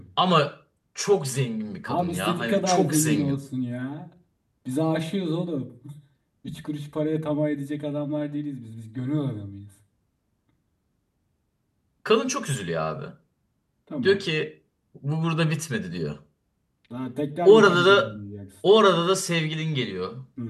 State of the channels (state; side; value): identical; both; correlation 1.00